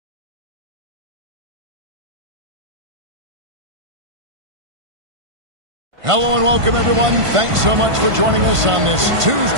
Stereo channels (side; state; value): left; late; 1.5 ms